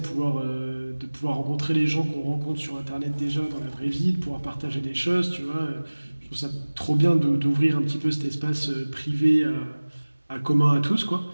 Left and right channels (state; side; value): inverted; both; correlation -1.00